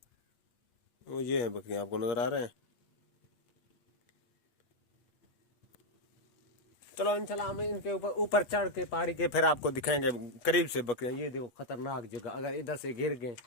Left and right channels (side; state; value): right; late; 8.3 ms